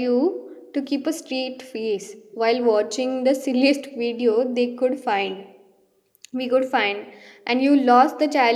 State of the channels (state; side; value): identical; both; correlation 1.00